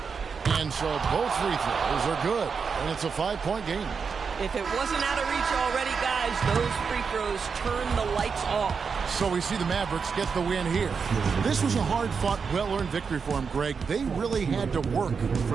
And so both free throws are good, and it's a 5-point game. If it wasn't out of reach already, guys, those free throws turn the lights off. So we see the Mavericks get the win here. This was a hard-fought, well-earned victory for them, Greg. They really had to work for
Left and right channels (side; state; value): left; quieter; 5.7 dB